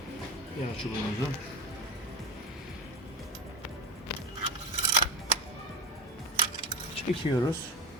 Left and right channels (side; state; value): both; normal; correlation 0.23